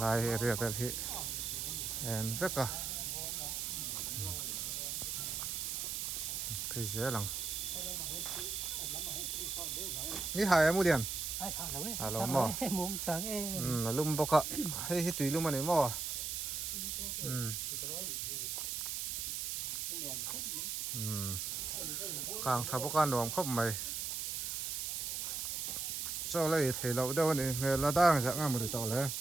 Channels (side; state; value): right; noise; hiss, 2 dB below the sound